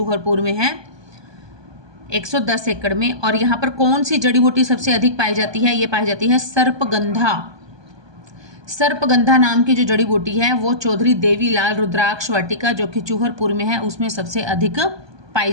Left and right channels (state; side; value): late; left; 1.2 ms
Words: में है। 110 एकड़ में। और यहाँ पर कौन सी जड़ी बूटी सबसे अधिक पाई जाती है? ये पाई जाती है सर्पगंधा। सर्पगंधा नाम की जो जड़ी बूटी है वो चौधरी देवीलाल रुद्राक्ष वाटिका जो कि चूहरपुर में है उसमें सबसे अधिक पाई